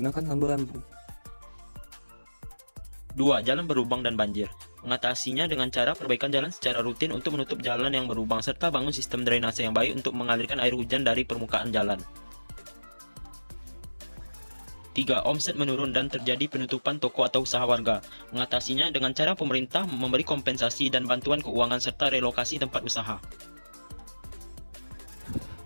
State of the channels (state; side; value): inverted; both; correlation -1.00